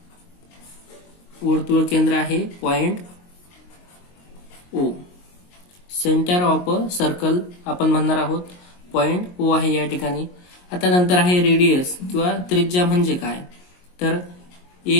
केंद्र आहे point O. Centre of a circle आपण म्हणणार आहोत पॉइंट ओ आहे या ठिकाणी। आता नंतर आहे रेडियस किंवा त्रिज्या म्हणजे काय, तर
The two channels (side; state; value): right; late; 22 ms